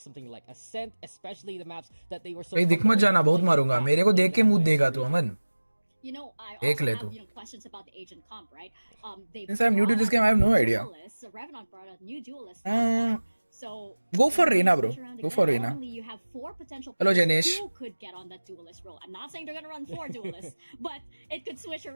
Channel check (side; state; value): both; inverted; correlation -1.00